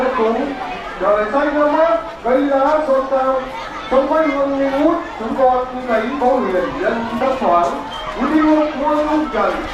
cúng, trời xanh nước mát, cây lá xôn xao, trong quê hương nghi ngút, chúng con thấy có huyền nhân đất thoáng, quý yêu muôn hương trần.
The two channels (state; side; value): identical; both; correlation 1.00